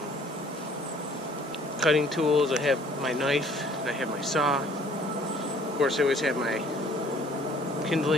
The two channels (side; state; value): both; normal; correlation 0.57